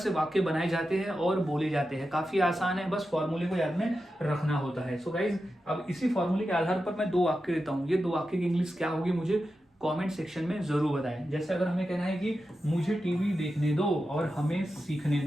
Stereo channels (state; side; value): normal; both; correlation 0.91